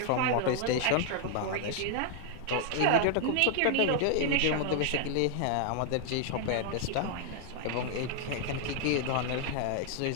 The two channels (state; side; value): different; both; correlation 0.00